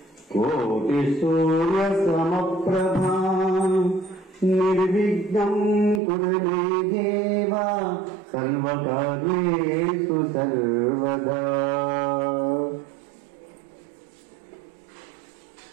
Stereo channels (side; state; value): left; drops out; at 6.0 s